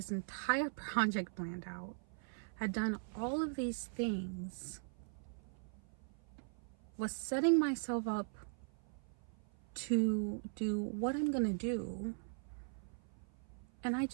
entire project planned out, had done all of these things, was setting myself up to do what I'm gonna do, and I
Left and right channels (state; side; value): silent; left; 51 dB below the other